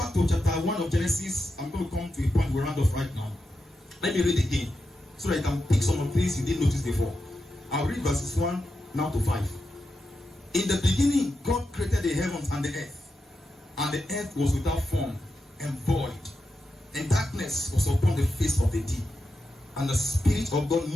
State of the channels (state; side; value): normal; both; correlation 0.88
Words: to chapter 1 of Genesis, I'm going to come to a point we round off right now. Let me read again so that you can pick some of the things you didn't notice before. I'll read verses 1 now to 5. In the beginning, God created the heavens and the earth, and the earth was without form and void, and darkness was upon the face of the deep, and the Spirit of God